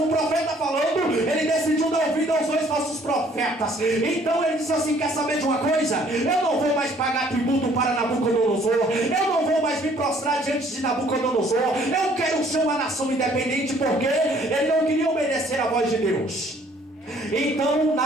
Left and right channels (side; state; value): both; normal; correlation 0.60